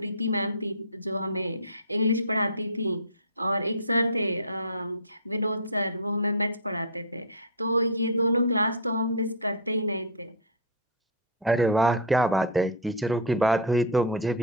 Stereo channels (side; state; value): both; normal; correlation -0.08